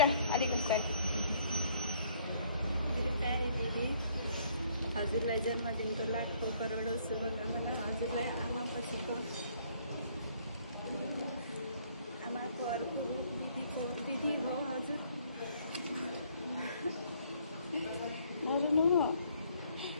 अलिकति। मेरो प्यारी दिदी, हजुरलाई जन्मदिनको लाखौँ करोडौँ शुभकामना। हजुरलाई आमापछिको आमाको अर्को दिदीको दिदी हो हजुर।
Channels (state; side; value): inverted; both; correlation -0.63